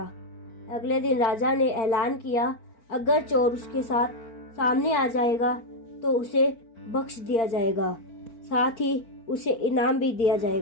अगले दिन राजा ने ऐलान किया, अगर चोर उसके साथ सामने आ जाएगा तो उसे बख्श दिया जाएगा, साथ ही उसे इनाम भी दिया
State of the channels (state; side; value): late; right; 4.4 ms